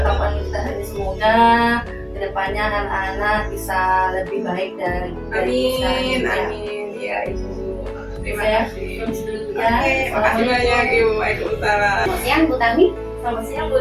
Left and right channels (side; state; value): both; identical; correlation 1.00